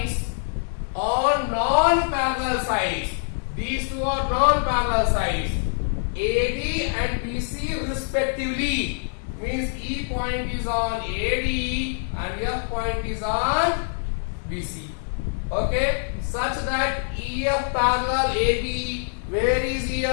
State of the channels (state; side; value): silent; right; digital silence